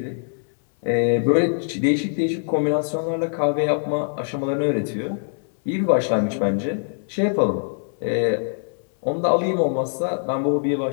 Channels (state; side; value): silent; right; digital silence